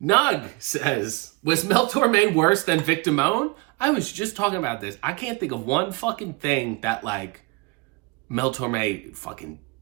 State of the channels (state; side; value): quieter; left; 26.2 dB